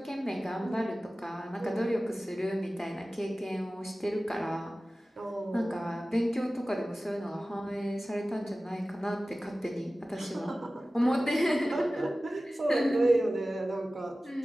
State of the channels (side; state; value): both; normal; correlation 0.96